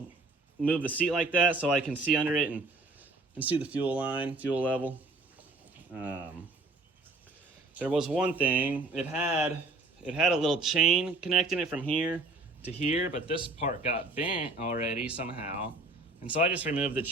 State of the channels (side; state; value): left; quieter; 3.3 dB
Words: move the seat like that so I can see under it and see the fuel line, fuel level. There was one thing. It had a little chain connecting it from here to here, but this part got bent already somehow. And so I just removed the